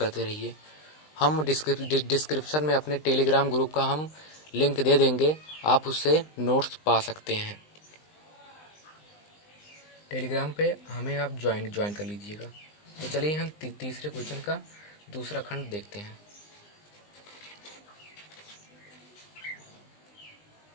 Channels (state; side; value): late; right; 20 ms